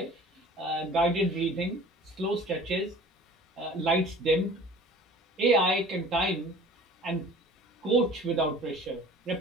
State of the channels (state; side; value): normal; both; correlation 0.45